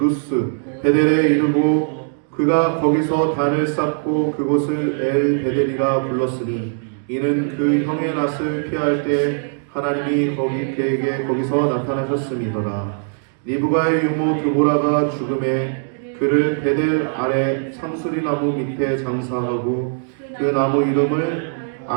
베델에 이르고 그가 거기서 단을 쌓고 그곳을 엘 베델이라 불렀으니 이는 그 형의 낯을 피할 때 하나님이 그에게 거기서 나타나셨음이더라. 리브가의 유모 드보라가 죽음에 그를 베델 아래 상수리나무 밑에 장사하고 그 나무 이름을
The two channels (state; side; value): silent; left; digital silence